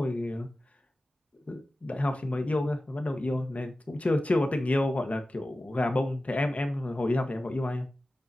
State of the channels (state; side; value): normal; both; correlation 0.95